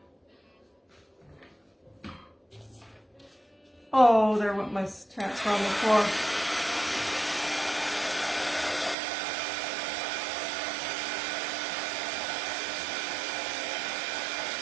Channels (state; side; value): drops out; left; at 9.0 s